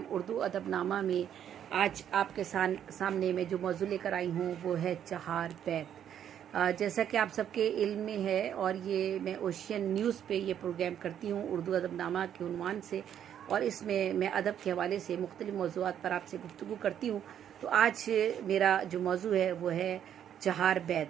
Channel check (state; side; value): quieter; left; 9.7 dB